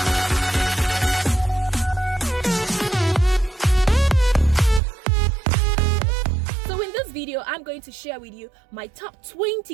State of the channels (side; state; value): left; drops out; at 4.8 s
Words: So in this video, I'm going to share with you my top